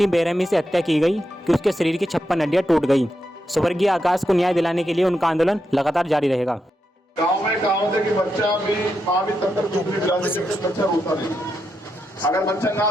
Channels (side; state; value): both; normal; correlation 0.85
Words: बेरहमी से हत्या की गई कि उसके शरीर की 56 हड्डियां टूट गई। स्वर्गीय आकाश को न्याय दिलाने के लिए उनका आंदोलन लगातार जारी रहेगा। गांव में कहावत है कि बच्चा भी माँ भी तब तक चुपड़ी पिला देती है, बच्चा रोता नहीं। अगर बच्चा ना